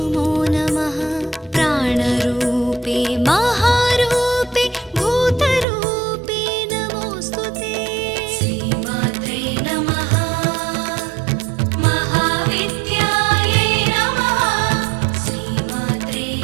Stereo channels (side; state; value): left; drops out; at 5.7 s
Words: नमः। प्राणरूपे महारूपे भूतरूपे नमोस्तुते। श्रीमात्रे नमः। महाविद्यायै नमः। श्रीमात्रे